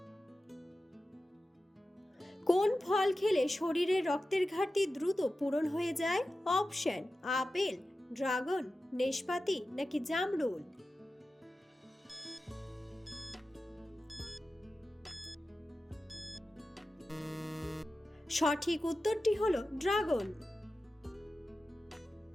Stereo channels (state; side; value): normal; both; correlation 0.93